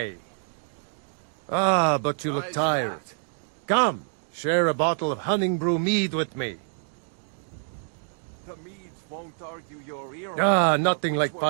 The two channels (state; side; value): silent; left; digital silence